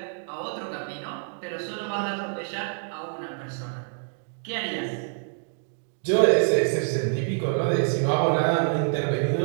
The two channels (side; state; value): left; silent; digital silence